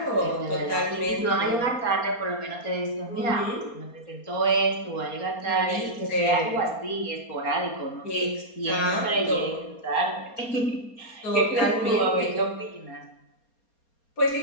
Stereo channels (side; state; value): right; late; 4.3 ms